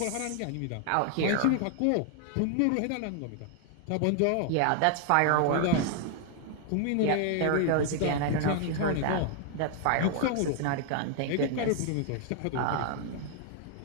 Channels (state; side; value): different; both; correlation 0.00